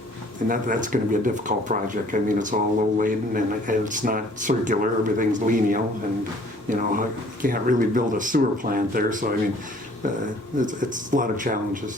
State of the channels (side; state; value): both; normal; correlation 0.56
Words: And that's going to be a difficult project. I mean, it's all low laden, and it's not circular. Everything's lineal, and, you can't really build a sewer plant there. So, I mean, it's a lot of